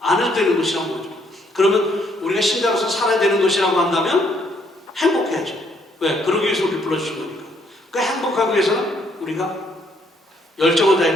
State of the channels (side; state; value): both; normal; correlation 0.69